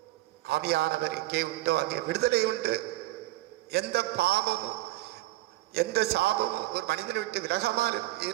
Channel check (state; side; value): quieter; left; 17.9 dB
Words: ஆவியானவர் எங்கே உண்டோ அங்கே விடுதலை உண்டு. எந்த பாவமும் எந்த சாபமும் ஒரு மனிதனை விட்டு விலகாமல்